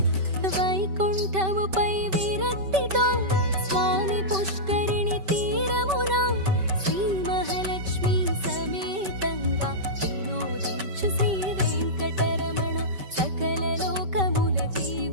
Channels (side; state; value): left; late; 5.2 ms